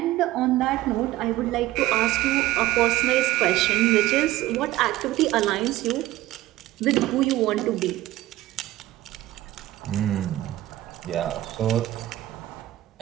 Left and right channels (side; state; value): left; quieter; 16.2 dB